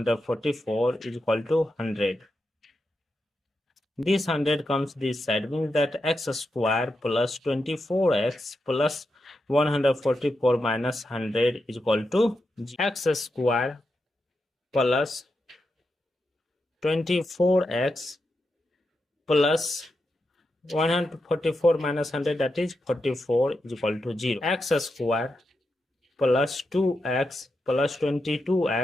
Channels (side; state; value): both; normal; correlation 0.87